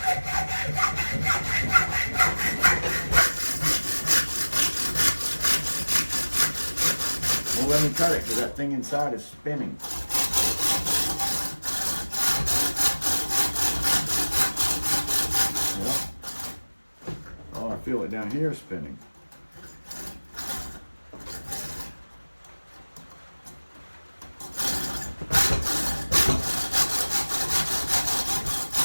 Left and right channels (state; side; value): inverted; both; correlation -1.00